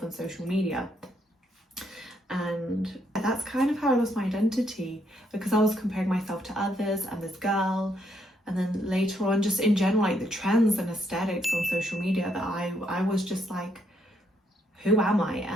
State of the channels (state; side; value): normal; both; correlation 0.74